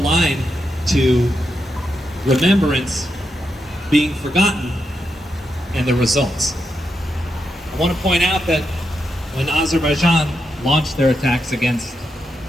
to remembrance being forgotten and the results. I want to point out that when Azerbaijan launched their attacks against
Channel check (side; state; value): both; normal; correlation 0.85